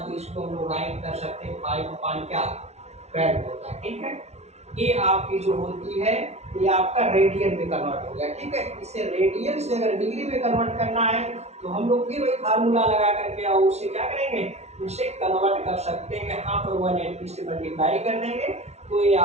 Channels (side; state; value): left; late; 0.31 ms